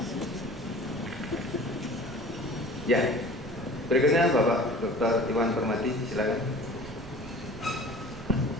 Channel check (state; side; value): noise; right; rumble, 14 dB below the sound